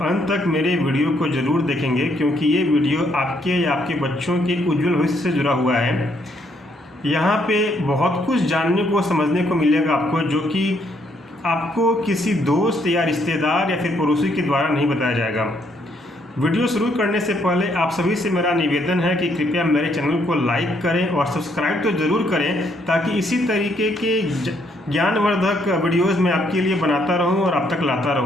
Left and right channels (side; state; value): both; normal; correlation 0.71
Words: अंत तक मेरे वीडियो को ज़रूर देखेंगे, क्योंकि ये वीडियो आपके या आपके बच्चों के उज्जवल भविष्य से जुड़ा हुआ है। यहाँ पे बहुत कुछ जानने को समझने को मिलेगा आपको, जो कि आपको किसी दोस्त या रिश्तेदार या फिर पड़ोसी के द्वारा नहीं बताया जाएगा। वीडियो शुरू करने से पहले आप सभी से मेरा निवेदन है कि कृपया मेरे चैनल को लाइक करें और सब्सक्राइब तो ज़रूर करें, ताकि इसी तरीके के ज्ञानवर्धक वीडियोज़ मैं आपके लिए बनाता रहूं और आप तक लाता